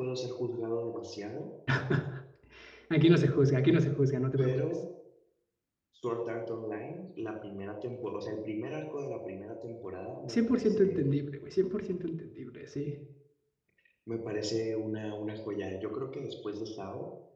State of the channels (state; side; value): identical; both; correlation 1.00